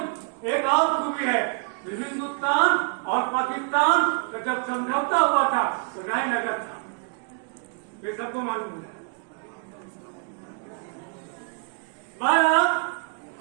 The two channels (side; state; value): left; quieter; 37.9 dB